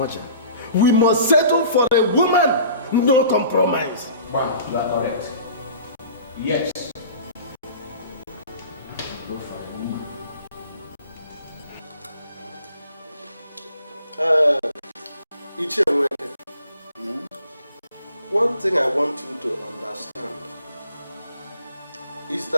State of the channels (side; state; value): both; inverted; correlation -0.48